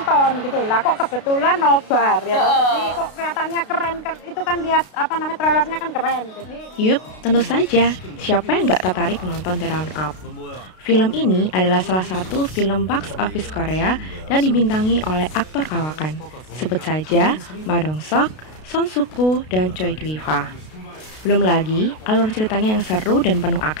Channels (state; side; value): late; right; 32 ms